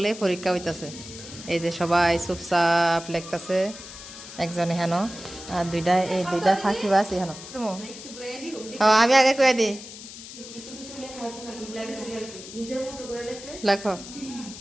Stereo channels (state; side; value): noise; left; hiss, 14 dB below the sound